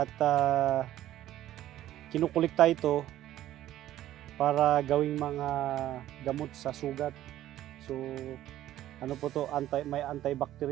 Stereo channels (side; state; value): left; quieter; 13.4 dB